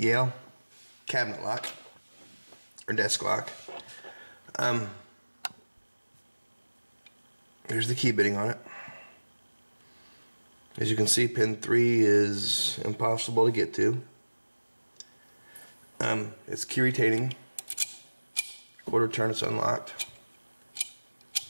cabinet lock or desk lock. There's the key bitting on it. As you can see, pin 3 is impossible to get to. It's key retaining. Quarter turn, it's unlocked.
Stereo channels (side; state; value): both; inverted; correlation -1.00